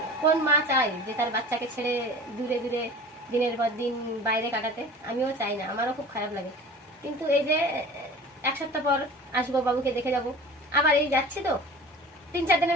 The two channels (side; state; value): both; normal; correlation 0.40